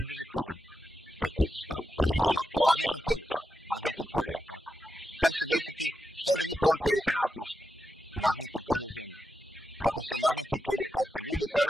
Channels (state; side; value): normal; both; correlation 0.87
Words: program? Kako misliš, to ima ona ploča? Magnetno polje. Magnetno polje, tako. Šta će se desiti, šta drži program koji se nama pušta? Magnetno polje Zemlje. Kako se magnetno polje, pazite, ljudi